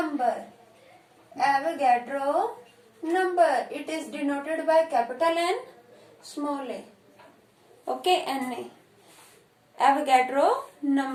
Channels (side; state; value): both; identical; correlation 1.00